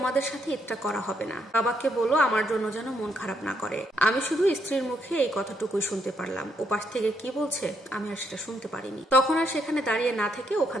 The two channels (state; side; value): normal; both; correlation 0.75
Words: সাথে ঈদটা করা হবে না। বাবাকে বলো আমার জন্য যেন মন খারাপ না করে। আমি শুধু স্ত্রীর মুখে এই কথাটুকুই শুনতে পারলাম, ওপাশ থেকে কি বলছে আমি আর সেটা শুনতে পারিনি। তখন আর সেখানে দাঁড়িয়ে না থেকে ওখান